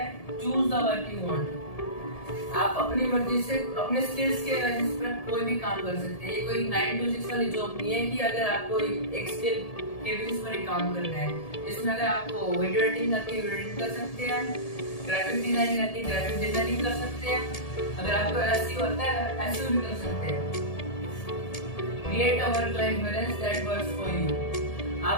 Choose the work you want. आप अपनी मर्जी से अपने स्किल्स के बेसिस पर कोई भी काम कर सकते हैं. ये कोई 9 to 6 वाली जॉब नहीं है कि अगर आपको एक स्किल के बेसिस पर ही काम करना है. इसमें अगर आपको वीडियो एडिटिंग आती है वीडियो एडिटिंग कर सकते हैं, ग्राफिक डिजाइनिंग आती है ग्राफिक डिजाइनिंग कर सकते हैं, अगर आपको एसईओ आता है एसईओ भी कर सकते हैं. Create a work life balance that works for you.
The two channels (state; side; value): late; right; 1.7 ms